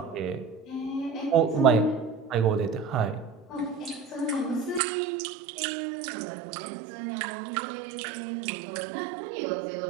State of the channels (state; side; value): drops out; left; at 4.8 s